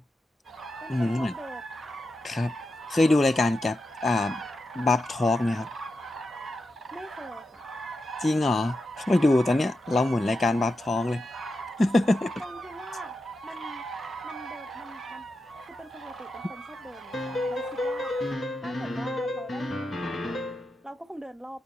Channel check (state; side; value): normal; both; correlation 0.88